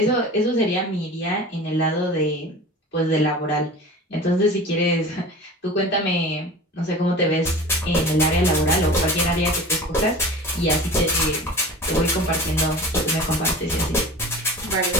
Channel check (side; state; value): both; normal; correlation 0.37